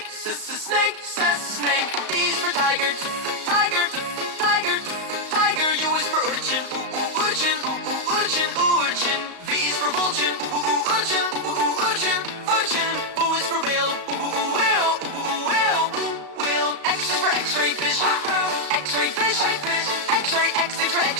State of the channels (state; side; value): late; left; 35 ms